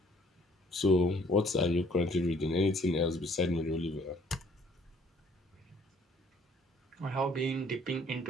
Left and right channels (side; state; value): both; normal; correlation 0.60